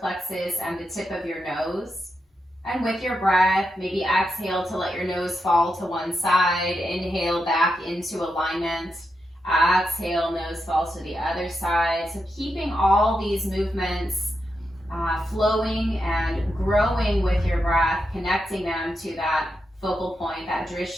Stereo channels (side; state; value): both; normal; correlation 0.86